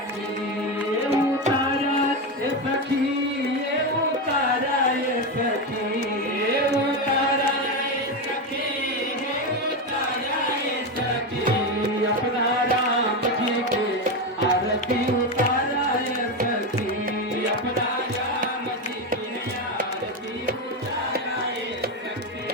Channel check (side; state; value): both; normal; correlation 0.13